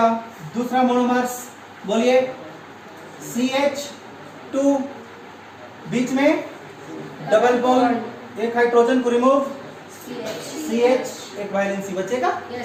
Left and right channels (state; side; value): identical; both; correlation 1.00